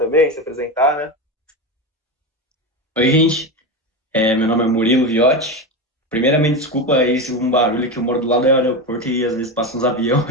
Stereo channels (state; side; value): normal; both; correlation 0.18